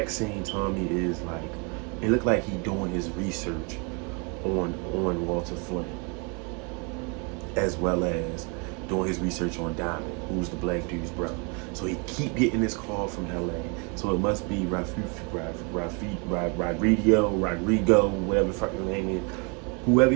scene, Tommy is like, it looked like he doing his research on Walter Flynn, as well as doing his research on Diamond, who's the black dude's brother. So he keep getting this call from LA. So it must be Rodrigo, whatever the fuck his name is. Whoever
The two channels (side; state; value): left; quieter; 33.6 dB